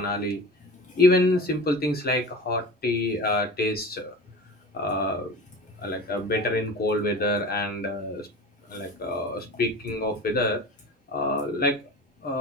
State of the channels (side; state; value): both; normal; correlation 0.34